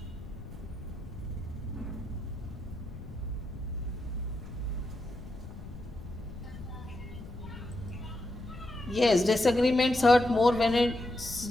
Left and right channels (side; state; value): left; noise; rumble, 13 dB below the sound